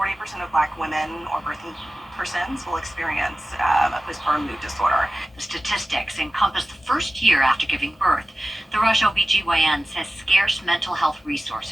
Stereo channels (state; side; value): normal; both; correlation 0.95